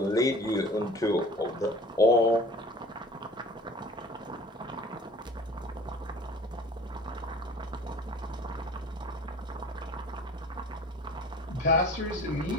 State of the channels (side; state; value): both; normal; correlation 0.45